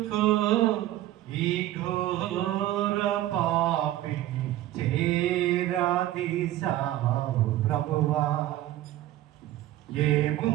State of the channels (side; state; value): left; quieter; 14.4 dB